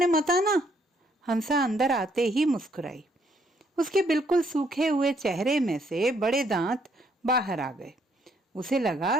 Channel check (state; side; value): normal; both; correlation 0.69